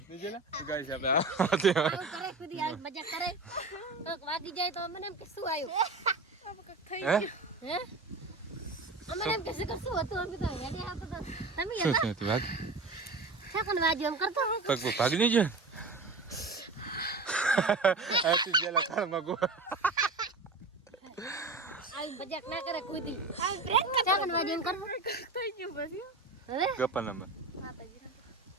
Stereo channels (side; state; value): left; quieter; 3.5 dB